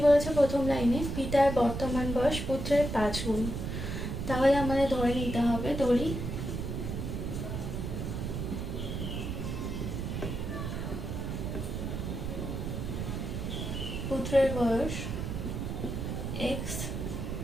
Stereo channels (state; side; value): noise; right; rumble, 4 dB below the sound